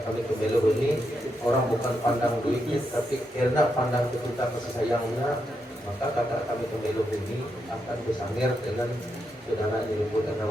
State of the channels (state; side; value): normal; both; correlation 0.82